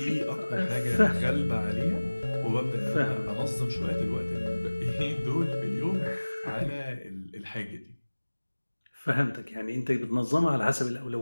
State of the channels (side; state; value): both; inverted; correlation -1.00